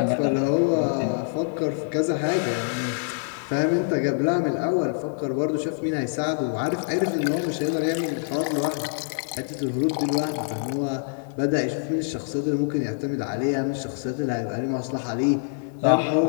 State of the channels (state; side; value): silent; right; digital silence